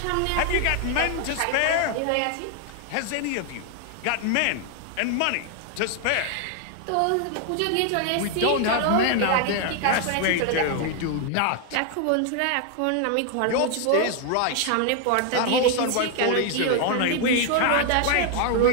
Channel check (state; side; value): different; both; correlation 0.00